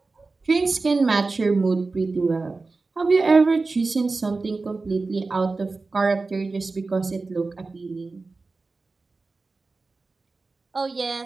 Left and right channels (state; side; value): quieter; left; 3.8 dB